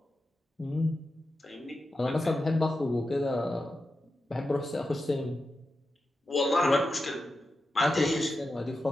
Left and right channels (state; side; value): normal; both; correlation 0.90